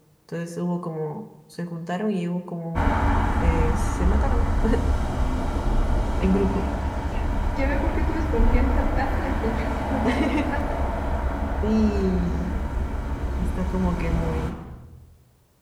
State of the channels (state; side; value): identical; both; correlation 1.00